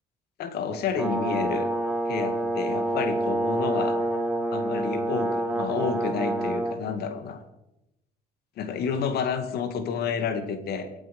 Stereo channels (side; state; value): both; normal; correlation 0.56